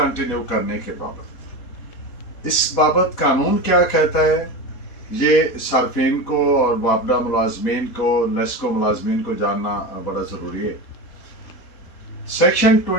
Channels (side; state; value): right; late; 4.1 ms